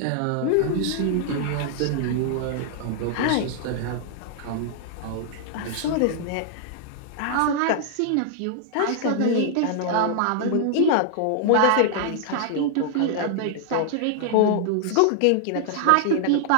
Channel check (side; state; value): both; different; correlation -0.01